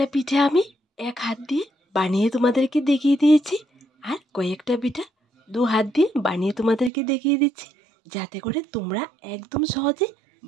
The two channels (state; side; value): drops out; left; at 6.9 s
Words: পিঠে আমি এক হাত দিয়ে বানিয়ে তোমাদেরকে দেখিয়ে দিয়েছি আর কয়েকটা পিঠা 2 হাত দিয়ে বানিয়ে তোমাদেরকে দেখিয়ে দিচ্ছি, যাতে করে তোমরা একদম সহজে